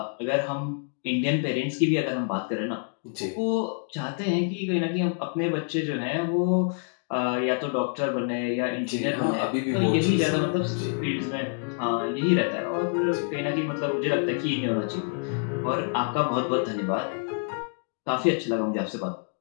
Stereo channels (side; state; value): right; silent; 60 dB below the other